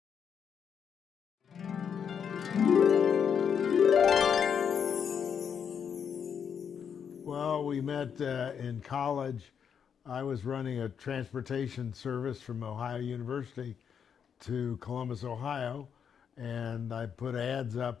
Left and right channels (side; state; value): right; quieter; 7.4 dB